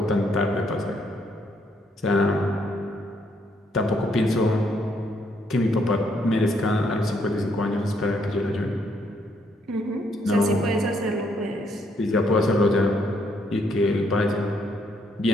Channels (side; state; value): both; normal; correlation 0.72